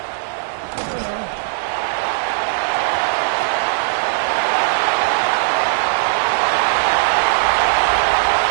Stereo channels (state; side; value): silent; left; digital silence